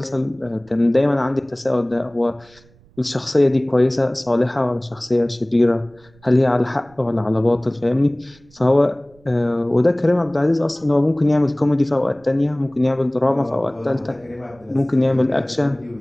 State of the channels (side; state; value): right; noise; rumble, 29 dB below the sound